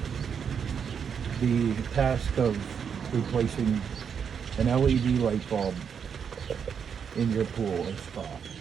the task of replacing an LED light bulb in your pool or spa.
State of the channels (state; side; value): quieter; left; 7.1 dB